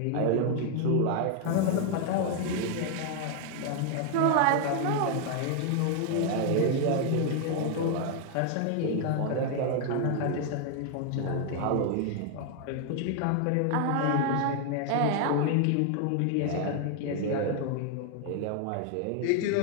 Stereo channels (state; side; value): different; both; correlation 0.00